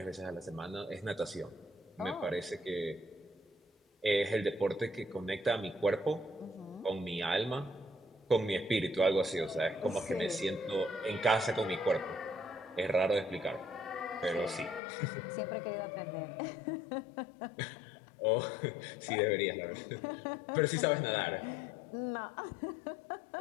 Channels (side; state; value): right; drops out; at 14.8 s